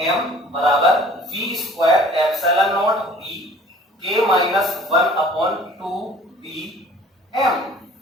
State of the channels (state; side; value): normal; both; correlation 0.50